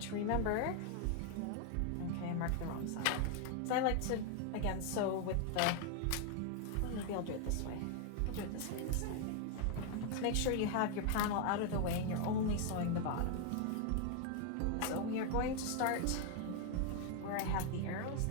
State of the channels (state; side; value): different; both; correlation 0.00